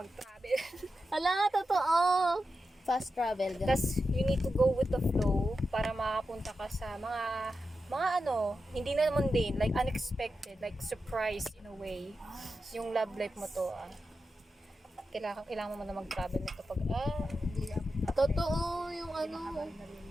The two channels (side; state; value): both; normal; correlation 0.90